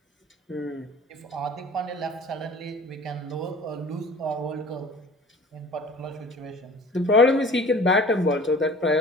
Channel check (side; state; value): both; normal; correlation 0.45